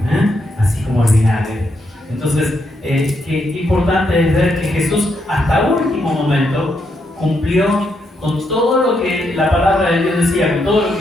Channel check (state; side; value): normal; both; correlation 0.79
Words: así como el vinagre. Entonces, qué importante es ver que Jesús hasta el último momento cumplió con todo lo que la palabra de Dios decía, con todo lo